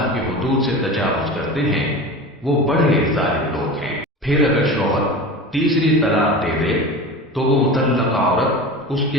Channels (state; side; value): normal; both; correlation 0.32